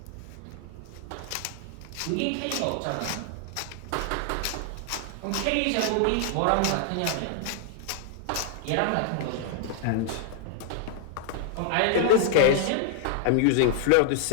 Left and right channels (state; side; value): different; both; correlation 0.00